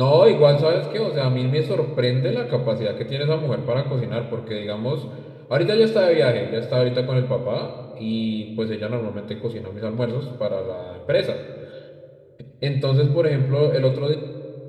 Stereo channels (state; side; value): identical; both; correlation 1.00